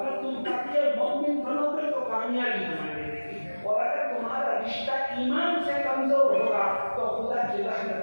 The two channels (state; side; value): inverted; both; correlation -1.00